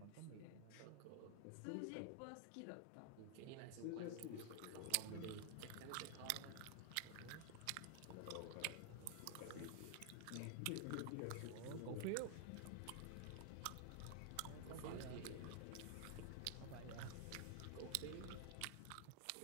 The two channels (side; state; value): both; different; correlation 0.00